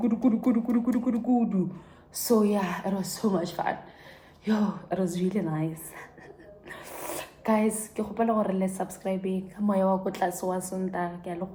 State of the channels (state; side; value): identical; both; correlation 1.00